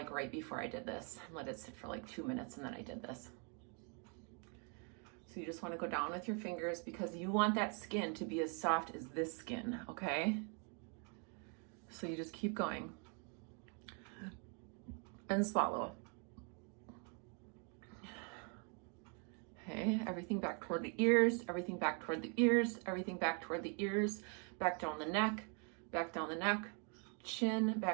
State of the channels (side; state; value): left; quieter; 37.9 dB